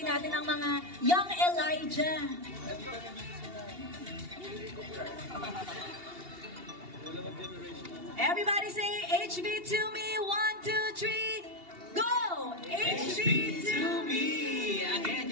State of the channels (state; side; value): late; left; 2.8 ms